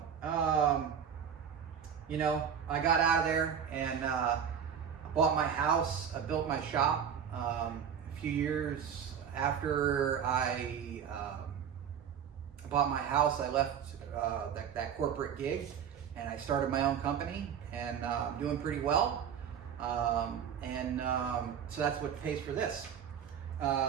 you know, I got out of there and I bought my house, I built my shop. A few years after I bought my house, I left that corporate gig and I started my own company, and I'm doing pretty well. So that's what pays for this.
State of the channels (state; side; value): quieter; left; 8.0 dB